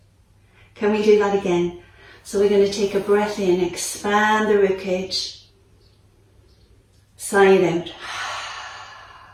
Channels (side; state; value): both; identical; correlation 1.00